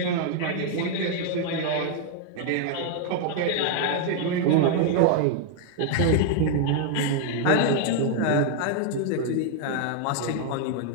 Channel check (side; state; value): both; different; correlation 0.00